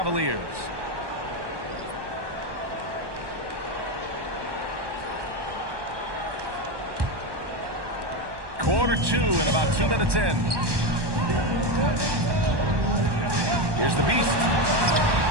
Quarter 2 and about 2 minutes in. Here's the Beast.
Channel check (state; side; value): late; left; 1.2 ms